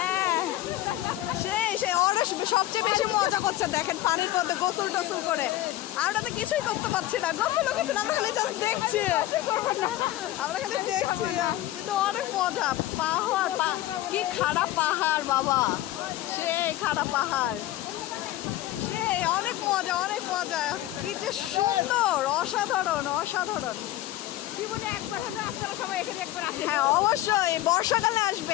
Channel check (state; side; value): quieter; right; 15.1 dB